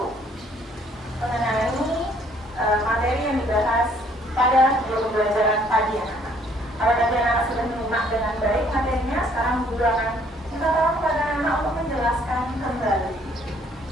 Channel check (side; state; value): both; normal; correlation 0.62